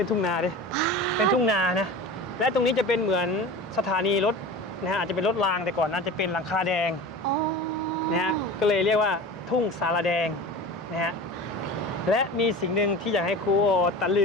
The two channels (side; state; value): both; normal; correlation 0.33